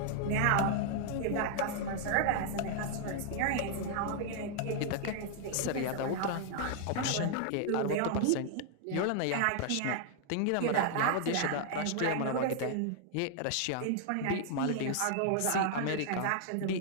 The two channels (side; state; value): both; different; correlation -0.01